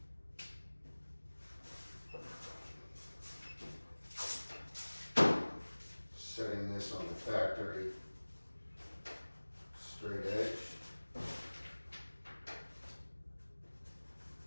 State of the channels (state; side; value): inverted; both; correlation -1.00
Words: Setting this on the factory straight edge.